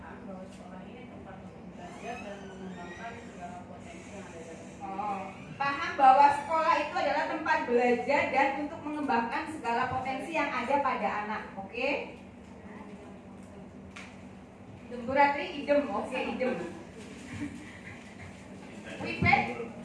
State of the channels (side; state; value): both; identical; correlation 1.00